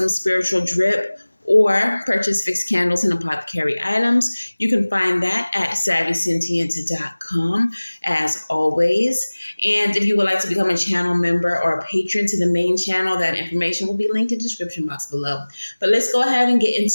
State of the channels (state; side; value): inverted; both; correlation -1.00